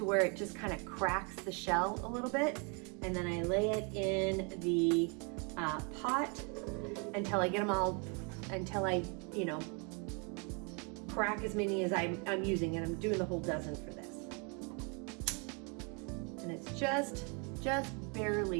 where it just kind of cracks the shell a little bit. And then I lay it in the pot until I get them all, until I, you know, crack as many as I'm using, and I'm doing the whole dozen for this. And it's just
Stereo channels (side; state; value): left; quieter; 34.5 dB